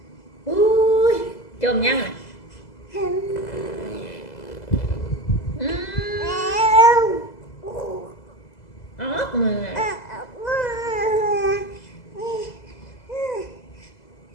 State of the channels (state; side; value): late; right; 2.0 ms